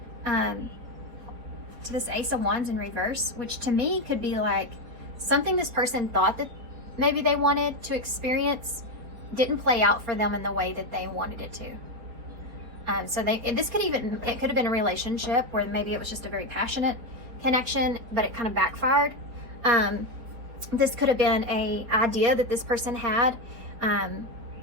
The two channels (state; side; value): late; left; 4.6 ms